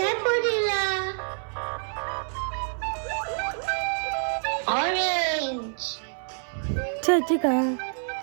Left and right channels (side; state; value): left; silent; 60 dB below the other